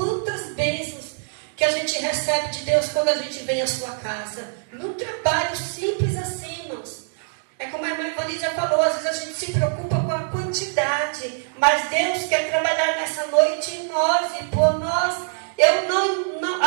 bênçãos que a gente recebe de Deus quando a gente vem à sua casa. Num trabalho simples assim, irmãos. É como a irmã Ivani já falou, às vezes a gente se preocupa com a quantidade, mas Deus quer trabalhar nessa noite em nós e por nós. Eu não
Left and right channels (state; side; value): silent; left; digital silence